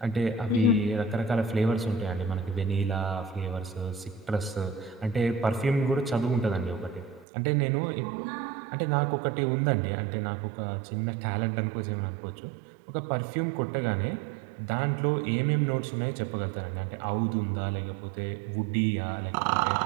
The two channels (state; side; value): drops out; left; at 7.2 s